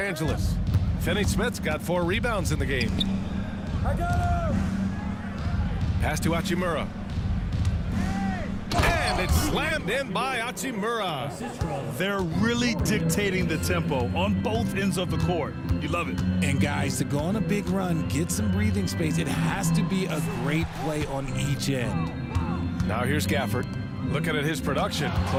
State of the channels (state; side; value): identical; both; correlation 1.00